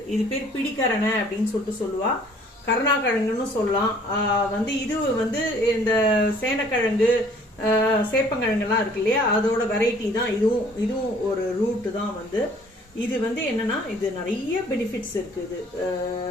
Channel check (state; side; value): normal; both; correlation 0.56